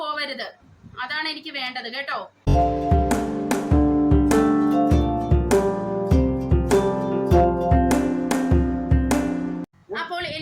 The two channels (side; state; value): both; identical; correlation 1.00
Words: പോവരുത്, അതാണ് എനിക്ക് വേണ്ടത് കേട്ടോ. അപ്പോൾ